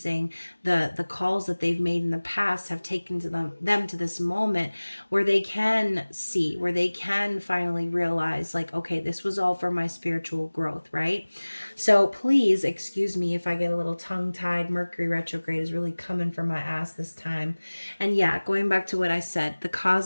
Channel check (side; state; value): both; inverted; correlation -1.00